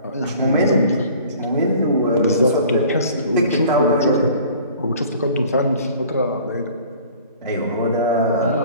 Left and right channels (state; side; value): inverted; both; correlation -0.49